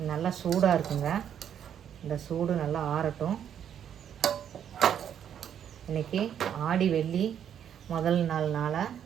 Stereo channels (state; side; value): quieter; left; 9.2 dB